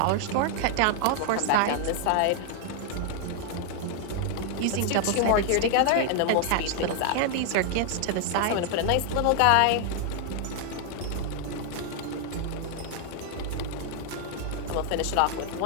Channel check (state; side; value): different; both; correlation 0.00